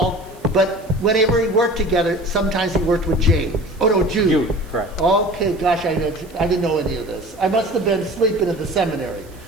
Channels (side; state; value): right; noise; hiss, 26 dB below the sound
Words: but whenever he worked together, sometimes he worked with James. Oh no, Jude. Jude, correct. Okay, gosh, I didn't know any of this. I must have been sleeping at the seminary.